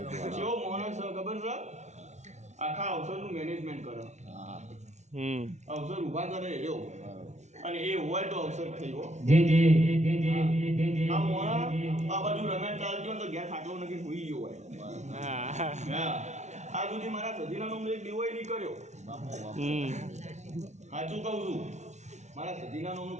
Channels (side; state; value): left; late; 0.33 ms